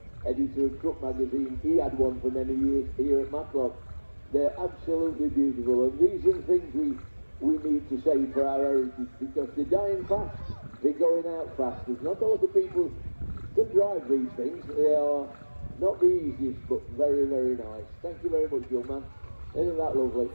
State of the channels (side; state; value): both; inverted; correlation -1.00